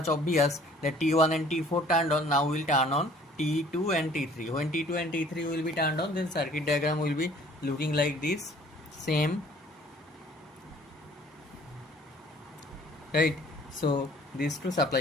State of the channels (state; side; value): normal; both; correlation 0.54